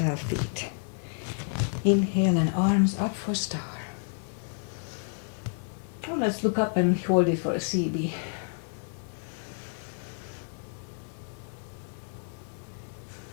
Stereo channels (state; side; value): silent; right; 58 dB below the other